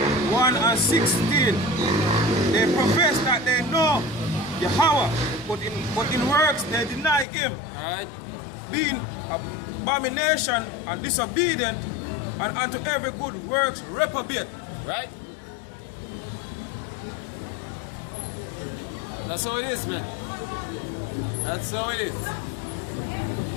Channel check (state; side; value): drops out; right; at 7.2 s